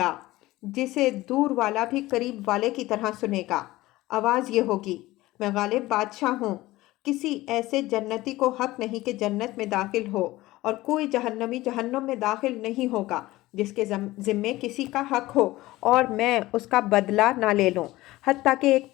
جسے دور والا بھی قریب والے کی طرح سنے گا۔ آواز یہ ہوگی، میں غالب بادشاہ ہوں، کسی ایسے جنتی کو حق نہیں کہ جنت میں داخل ہو، اور کوئی جہنمی جہنم میں داخل نہیں ہوگا جس کے ذمے کسی کا حق ہو اور میں اس کا بدلہ نہ لے لوں، حتیٰ کہ ایک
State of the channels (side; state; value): right; quieter; 18.0 dB